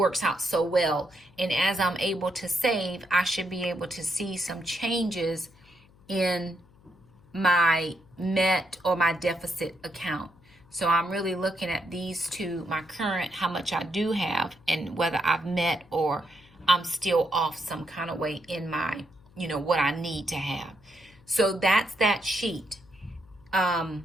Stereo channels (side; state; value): left; noise; hum, 28 dB below the sound